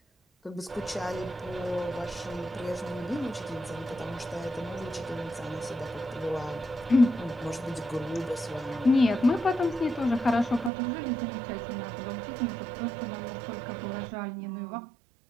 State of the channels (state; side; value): drops out; left; at 10.7 s